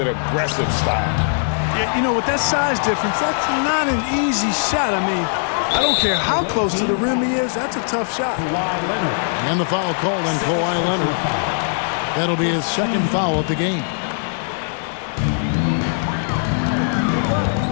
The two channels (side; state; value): right; silent; 66 dB below the other